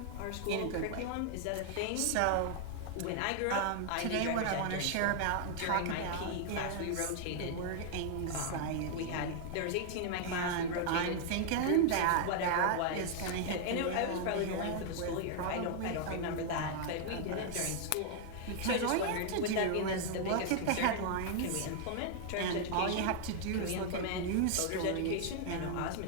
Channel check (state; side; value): different; both; correlation 0.00